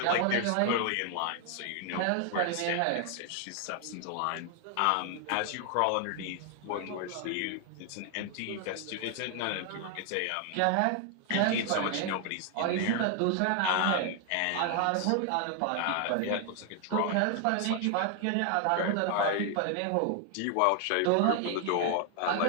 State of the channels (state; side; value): different; both; correlation 0.00